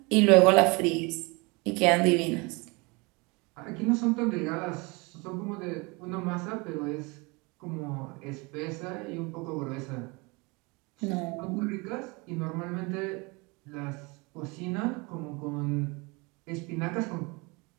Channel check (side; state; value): left; quieter; 27.4 dB